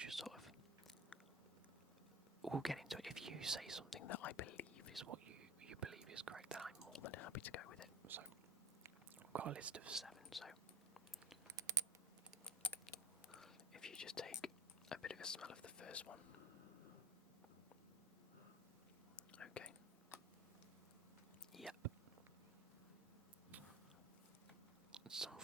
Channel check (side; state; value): both; normal; correlation 0.31